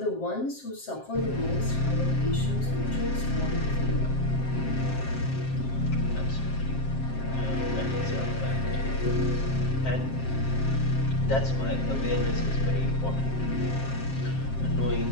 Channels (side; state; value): right; late; 7.6 ms